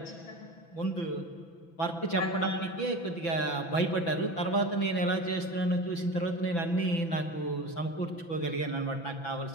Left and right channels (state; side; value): late; right; 6.0 ms